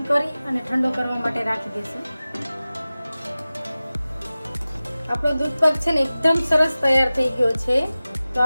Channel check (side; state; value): both; inverted; correlation -0.96